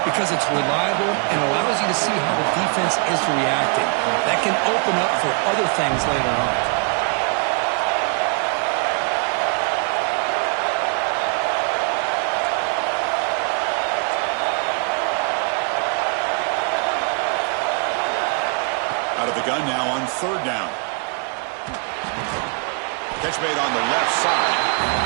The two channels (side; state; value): left; quieter; 38.7 dB